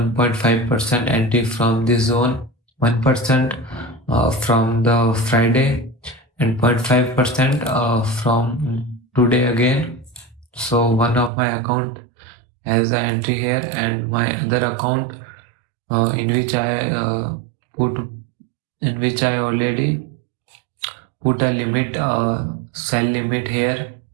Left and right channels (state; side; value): drops out; left; at 11.3 s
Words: entry from this zone, 1% from the Friday, and 0.5% from today again. So one of my account has an entry here, and my other account in which I already put a limit, sell limit here